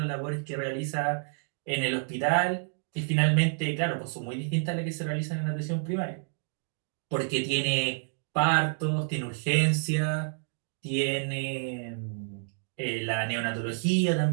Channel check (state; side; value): silent; left; 57 dB below the other